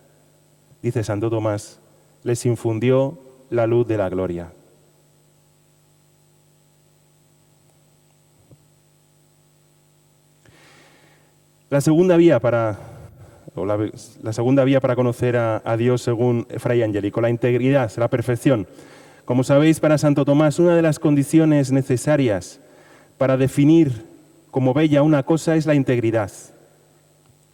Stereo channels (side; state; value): both; identical; correlation 1.00